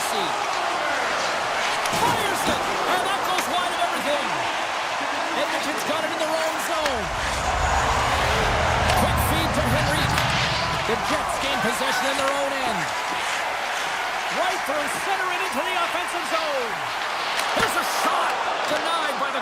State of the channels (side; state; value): both; identical; correlation 1.00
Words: Fires it, and that goes wide of everything. Edmonton's got it in their own zone. Quick feed to Henrique. The Jets gain possession in their own end. Right through center and into the offensive zone. Here's a shot, denied by the